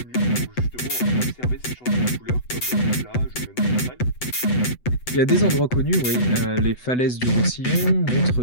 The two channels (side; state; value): right; late; 8.0 ms